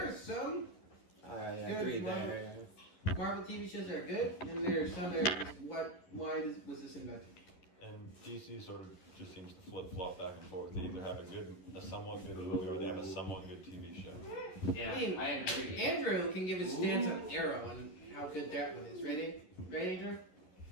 are some I There's agree Marvel- there. Marvel TV shows that are good, and there are some that are just, was this invented? And DC sort of just seems to flip flop back and forth. They either have a somewhat good movie or they have a somewhat good TV show. Yeah, I mean, I agree. Andrew can give his stance on Arrow and how good that one is. Ready, Andrew?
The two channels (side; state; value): right; late; 11 ms